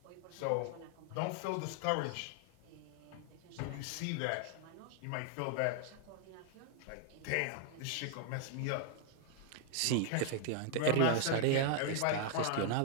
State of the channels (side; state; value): both; different; correlation 0.00